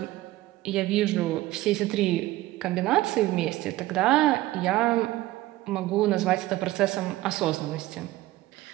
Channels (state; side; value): quieter; left; 17.0 dB